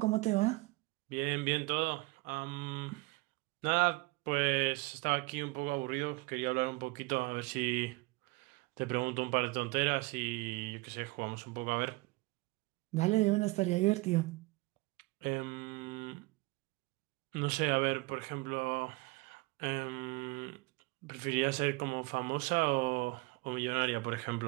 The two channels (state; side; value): quieter; left; 23.6 dB